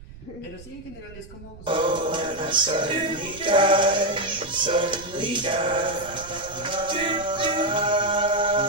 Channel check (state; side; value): noise; right; rumble, 19 dB below the sound